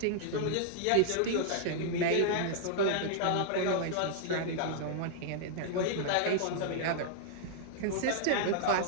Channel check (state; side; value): different; both; correlation -0.01